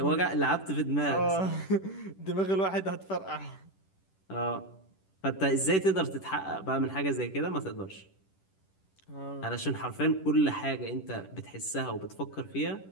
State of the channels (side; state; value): right; late; 10 ms